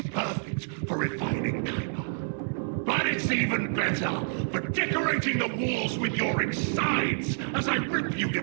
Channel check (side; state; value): left; silent; 57 dB below the other